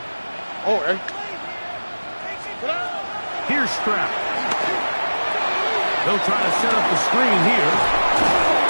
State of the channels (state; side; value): inverted; both; correlation -1.00